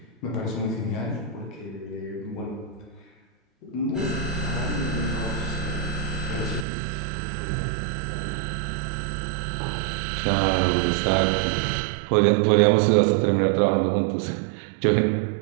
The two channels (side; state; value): left; drops out; at 6.7 s